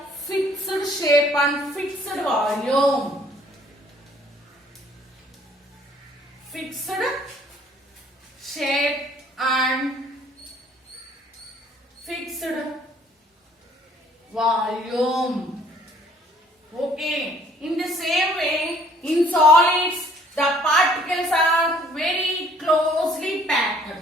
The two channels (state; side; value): normal; both; correlation 0.59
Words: fixed shape and fixed volume. Fixed shape and fixed volume. Okay. In the same way, in solids, the particles are very closely packed.